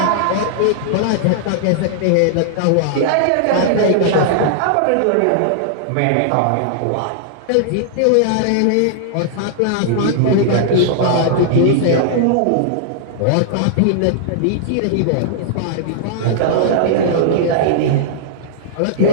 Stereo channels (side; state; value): both; different; correlation -0.01